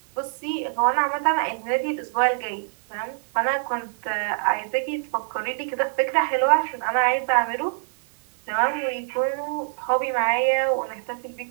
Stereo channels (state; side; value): silent; left; digital silence